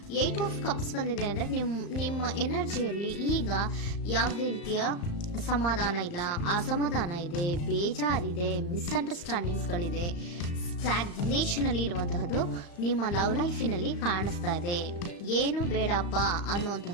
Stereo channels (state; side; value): late; right; 35 ms